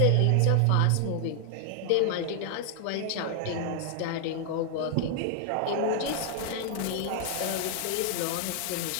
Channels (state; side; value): different; both; correlation 0.00